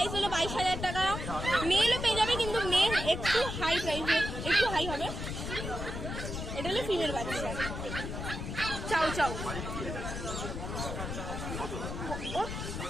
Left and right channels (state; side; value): noise; left; rumble, 5 dB below the sound